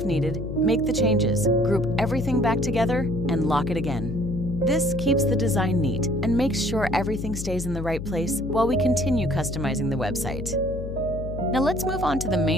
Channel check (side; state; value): left; noise; hum, 7 dB below the sound